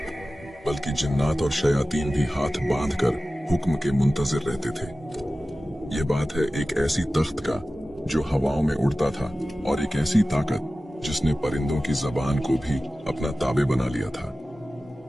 बल्कि जिन्नात और शयातीन भी हाथ बांधकर हुक्म के मुंतजिर रहते थे। ये बात है एक ऐसी तख्त का जो हवाओं में उड़ता था और एक ऐसी ताकत जिसने परिंदों की जबान को भी अपना ताबे बना लिया था।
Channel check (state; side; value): normal; both; correlation 0.96